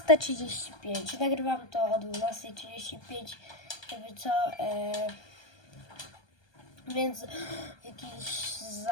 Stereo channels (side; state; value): right; late; 1.2 ms